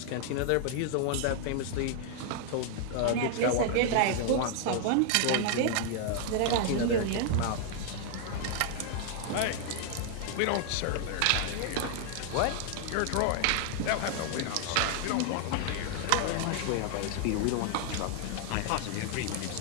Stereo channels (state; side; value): different; both; correlation 0.00